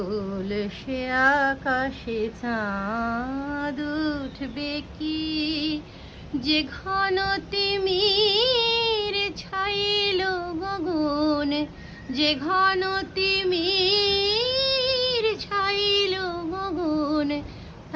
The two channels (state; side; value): identical; both; correlation 1.00